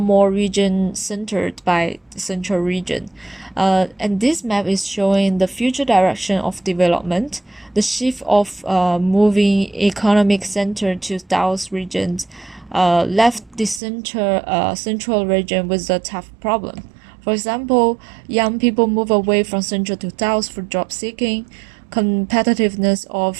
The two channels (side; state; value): left; drops out; at 13.8 s